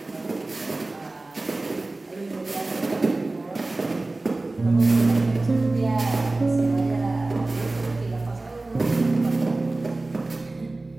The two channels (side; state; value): left; quieter; 3.1 dB